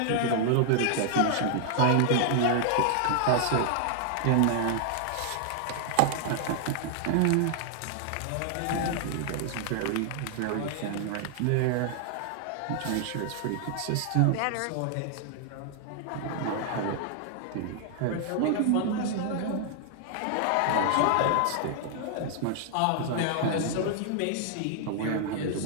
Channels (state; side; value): different; both; correlation 0.00